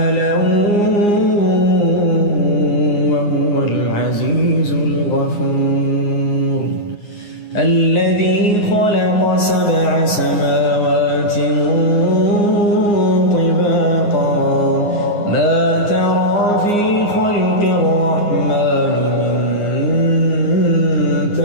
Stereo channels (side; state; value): right; late; 9.6 ms